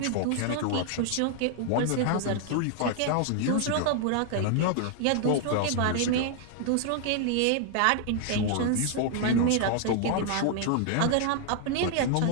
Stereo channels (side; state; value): both; different; correlation 0.00